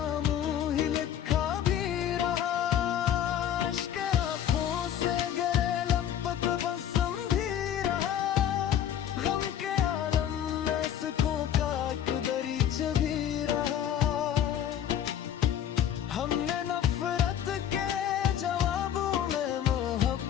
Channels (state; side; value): quieter; right; 10.1 dB